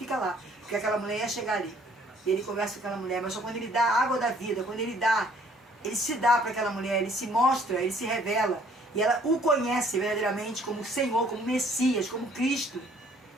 lá, porque aquela mulher ia chegar ali. E ele conversa com aquela mulher, mas só quando ele dá a água da vida, quando ele se dá para aquela mulher, ele se mostra, ele se revela, e ela o conhece verdadeiramente como Senhor, como Messias, como Cristo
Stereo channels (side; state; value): both; normal; correlation 0.60